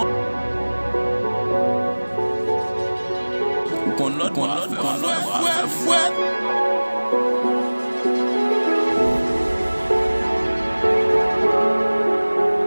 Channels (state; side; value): inverted; both; correlation -1.00